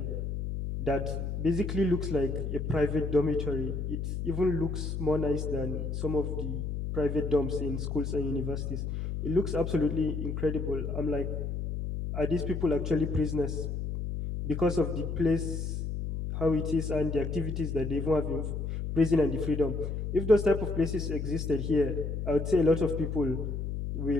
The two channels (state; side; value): noise; left; hum, 3 dB below the sound